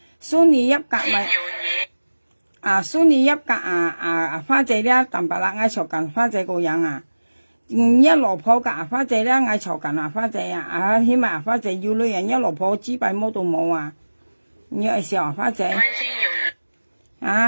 蘇尼一格咪蘇尼一格花姐咧，淡白啦，嗌嘈緊花姐個樣啊，一落鋪個花姐咧，嗌嘈緊花姐啊，起碼花姐要女人一落鋪支幣冇到冇啊，你愛笑花姐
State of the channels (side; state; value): both; inverted; correlation -1.00